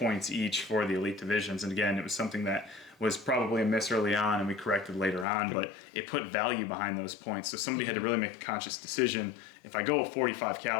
each for the elite divisions. And again, it was something that was probably a miss early on and we corrected later on, but it put value behind those points. So somebody had to really make a conscious decision. If I go 45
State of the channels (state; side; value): drops out; right; at 5.2 s